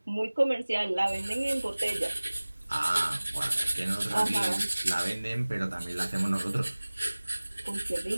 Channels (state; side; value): inverted; both; correlation -1.00